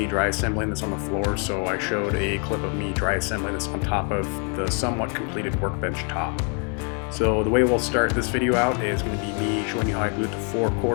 dry assembling this on the floor, so I showed a clip of me dry assembling this on top of the somewhat completed workbench top. So the way we'll start this video out is going to be me showing you how I glued the 4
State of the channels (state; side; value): quieter; right; 39.2 dB